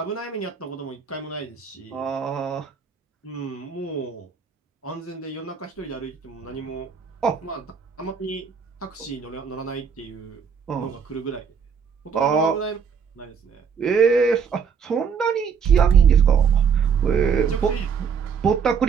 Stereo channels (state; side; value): quieter; left; 6.5 dB